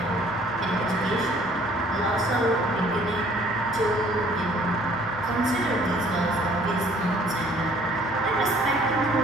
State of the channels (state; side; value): normal; both; correlation 0.57